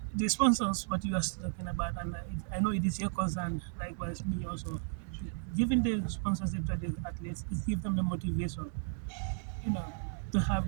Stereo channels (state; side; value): silent; left; digital silence